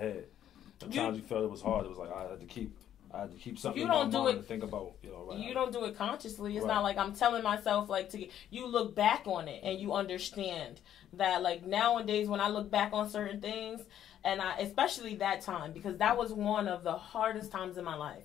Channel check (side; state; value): right; quieter; 10.7 dB